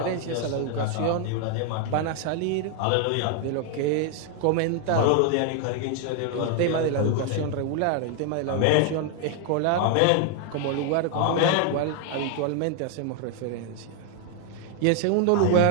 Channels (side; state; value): both; different; correlation 0.00